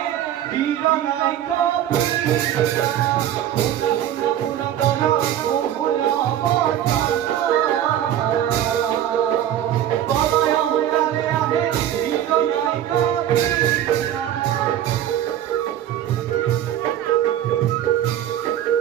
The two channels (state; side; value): quieter; left; 11.2 dB